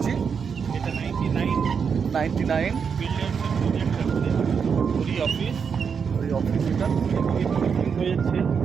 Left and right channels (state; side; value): quieter; left; 6.4 dB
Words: এটা 99 অফিস। ওই অফিসটা হয়েছে